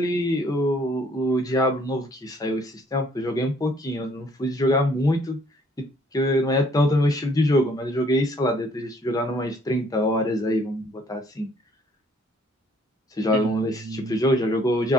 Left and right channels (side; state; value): both; normal; correlation 0.62